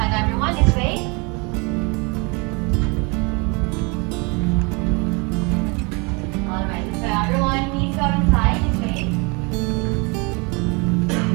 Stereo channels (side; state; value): left; quieter; 30.2 dB